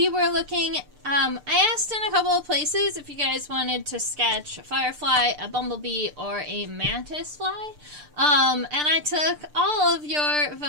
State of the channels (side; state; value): left; late; 6.7 ms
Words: were looking, I asked in a couple of places if you guys wanted to sketch a firefly, a bumblebee, or a mantis fly. And I took all of your